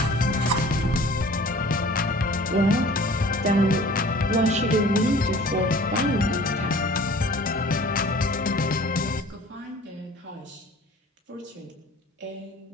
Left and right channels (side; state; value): both; normal; correlation 0.47